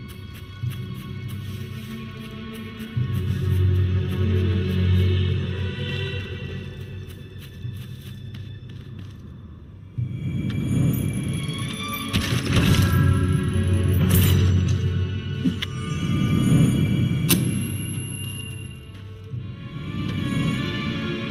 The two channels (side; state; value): both; identical; correlation 1.00